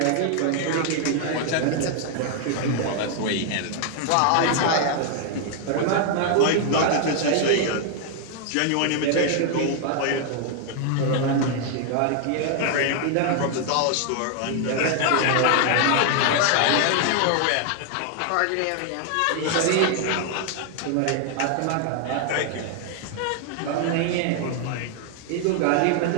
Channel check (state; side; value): different; both; correlation 0.00